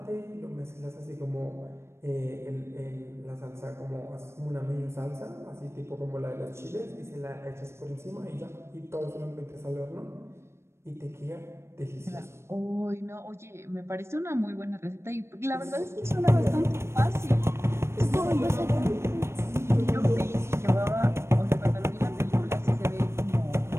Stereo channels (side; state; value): left; late; 0.13 ms